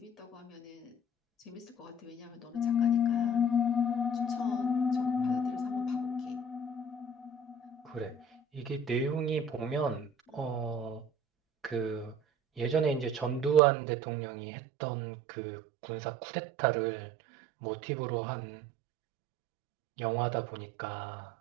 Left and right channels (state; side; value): drops out; left; at 13.6 s